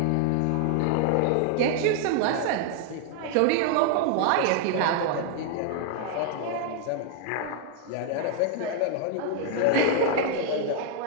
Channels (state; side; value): different; both; correlation 0.00